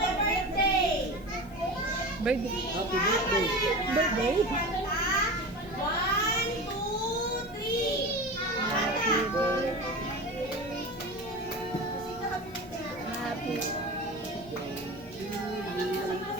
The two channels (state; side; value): noise; left; hiss, 27 dB below the sound